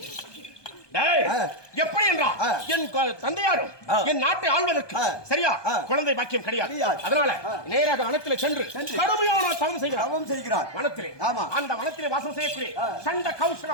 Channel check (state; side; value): late; right; 1.2 ms